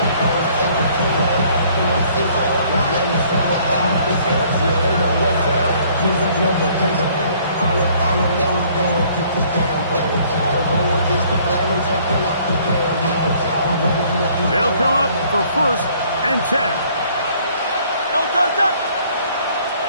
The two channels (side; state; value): both; inverted; correlation -0.60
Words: They'll come up for 1st and 10. Don't touch that!